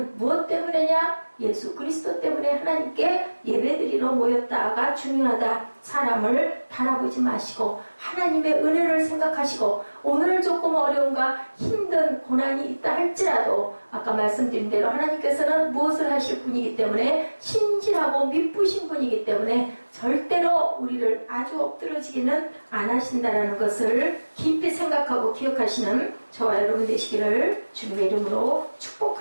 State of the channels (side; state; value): both; inverted; correlation -1.00